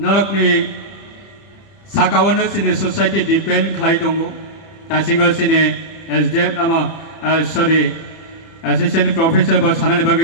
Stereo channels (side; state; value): right; late; 30 ms